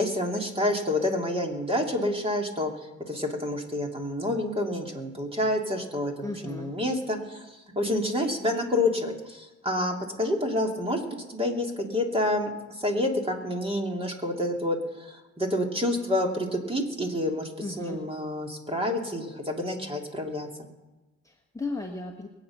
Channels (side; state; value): both; normal; correlation 0.36